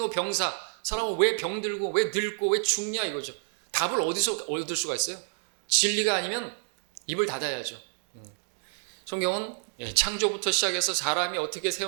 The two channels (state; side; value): silent; left; digital silence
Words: 사람은 왜 병들고 왜 늙고 왜 죽냐 이거죠. 답을 어디서 얻을 수가 있어요? 진리가 아니면 입을 닫아야죠. 성경은 창조부터 시작해서 사람이 어떻게